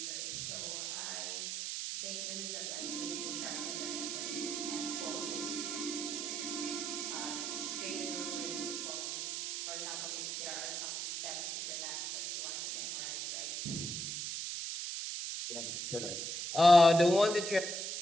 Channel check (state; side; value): noise; right; hiss, 3 dB below the sound